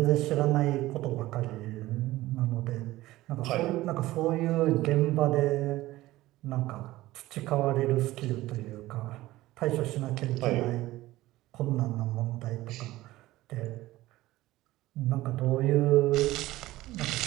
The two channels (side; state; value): left; quieter; 17.2 dB